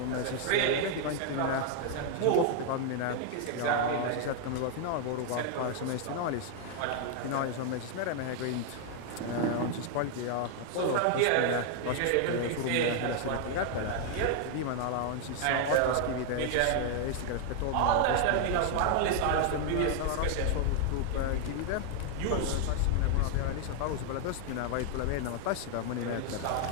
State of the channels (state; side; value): different; both; correlation 0.00